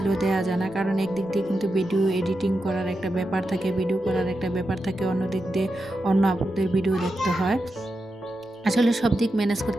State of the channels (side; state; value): both; normal; correlation 0.88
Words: দেওয়া যায় না। কারণ একদিক দিয়ে কিন্তু ভিডিও এডিটিং করার একটা ব্যাপার থাকে, ভিডিও করার একটা ব্যাপার থাকে, অন্য দিক দিয়ে অন্য আপুদের ভিডিও দেখতে হয়। আসলে সব দিক ম্যানেজ